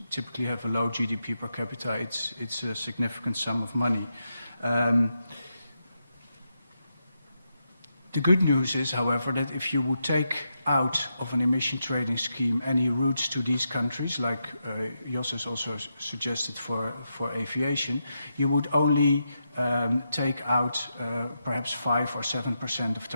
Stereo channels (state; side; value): inverted; both; correlation -0.85